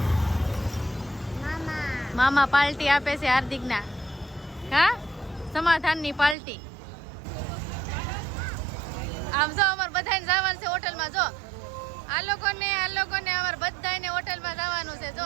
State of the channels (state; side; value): drops out; left; at 6.4 s